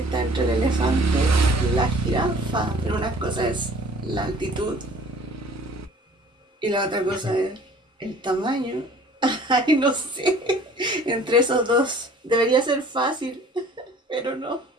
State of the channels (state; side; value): normal; both; correlation 0.50